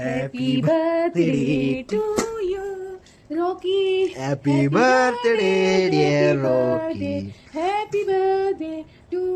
birthday to you Rocky. Happy birthday dear Rocky. Happy birthday to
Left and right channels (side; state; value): both; identical; correlation 1.00